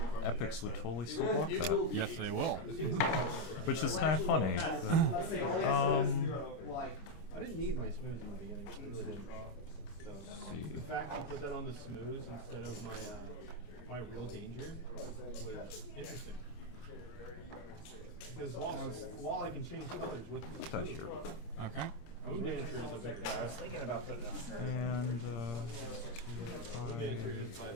epics would totally still block that, Yes, they will. which is kind of funny. But, I didn't need my smooths in the beginning. I really didn't. So the fact you put that on the smooths instead of my real danger was interesting. Because while I can change colors with put that here. Okay. Moon Dancer is a bigger threat. Thinking about putting it on. And Moon Dancer is by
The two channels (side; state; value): right; late; 26 ms